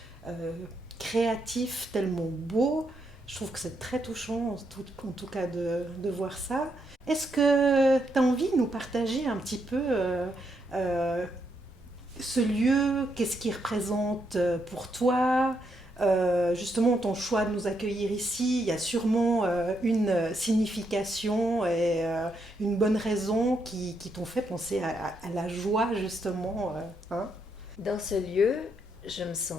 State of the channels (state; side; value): normal; both; correlation 0.78